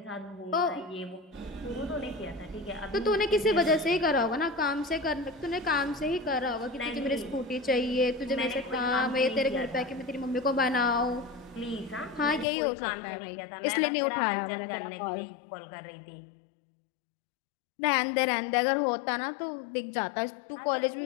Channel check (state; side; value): drops out; right; at 12.5 s